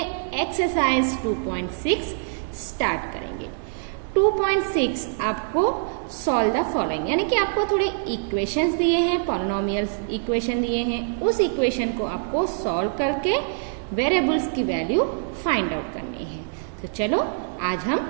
एक्सरसाइज 2.6 स्टार्ट करेंगे। 2.6 आपको सॉल्व द फॉलोइंग, यानी कि आपको थोड़े इक्वेशंस दिए हैं, पॉलिनोमियल इक्वेशन दिए हैं। उस इक्वेशन को आपको सॉल्व करके वेरिएबल्स की वैल्यू फाइंड आउट करनी है। तो चलो आज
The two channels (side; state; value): left; silent; digital silence